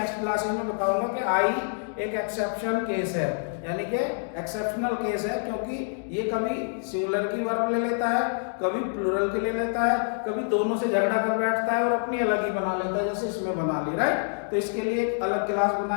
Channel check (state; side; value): silent; right; digital silence